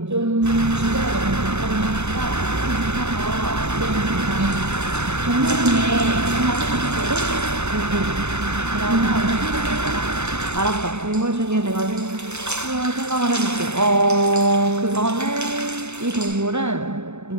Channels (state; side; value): late; left; 0.82 ms